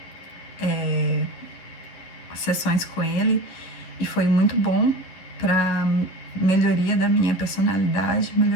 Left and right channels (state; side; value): late; right; 11 ms